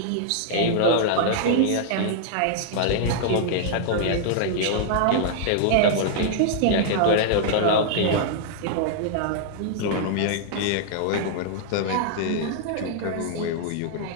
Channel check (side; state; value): both; different; correlation -0.01